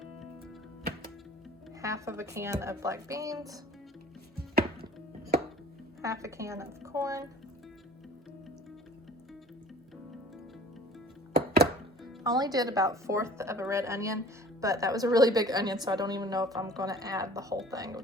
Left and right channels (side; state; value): both; normal; correlation 0.47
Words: half of a can of black beans, half a can of corn, I only did about 1/4 of a red onion, but that was a really big onion, so I don't even know if I'm going to add the whole thing